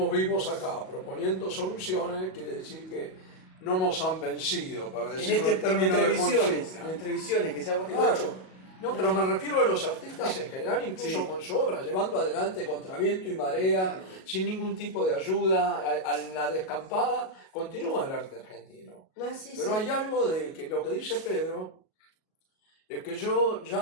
vivos acá proponiendo soluciones quiere decir que no nos han vencido, para decirlo en términos de consigna. En entrevisiones, que sea Claro. No, pero me refiero a los artistas en general, incluso con su obra, llevando adelante contra viento y marea, sin ningún tipo de ayuda, a la descampada, continúa el arte argentino. Pero hay algo de que lo que dice Pedro es que yo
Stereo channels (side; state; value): right; late; 37 ms